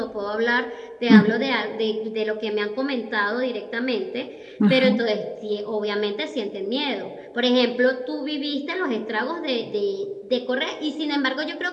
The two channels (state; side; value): identical; both; correlation 1.00